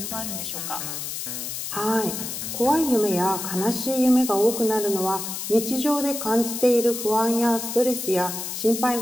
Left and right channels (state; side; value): noise; left; hiss, 6 dB below the sound